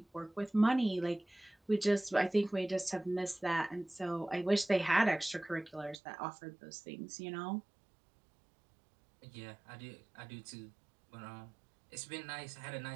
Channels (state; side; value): drops out; left; at 6.0 s